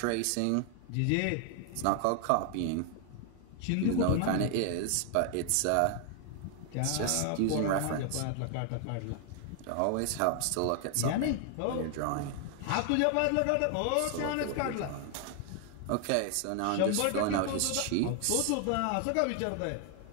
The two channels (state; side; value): different; both; correlation 0.00